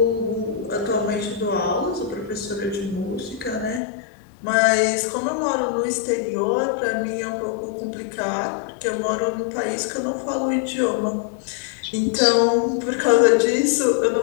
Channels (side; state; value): right; drops out; at 3.8 s